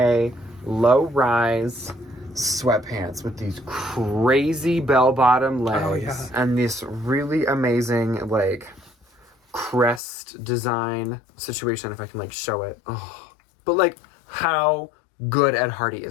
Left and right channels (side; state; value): right; drops out; at 10.0 s